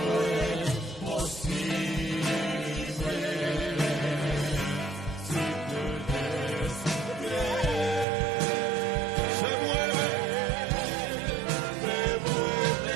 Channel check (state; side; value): drops out; left; at 8.1 s